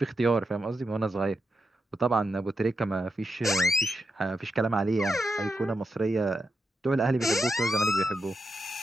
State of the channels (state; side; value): normal; both; correlation 0.86